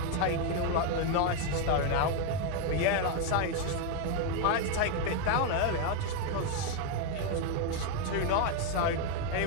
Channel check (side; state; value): both; different; correlation 0.01